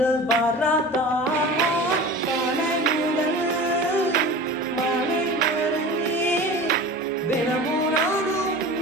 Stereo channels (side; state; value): both; normal; correlation 0.36